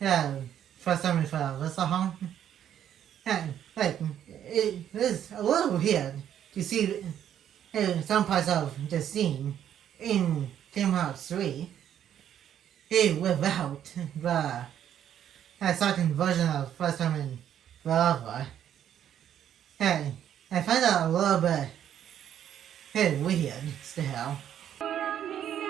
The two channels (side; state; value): left; quieter; 10.1 dB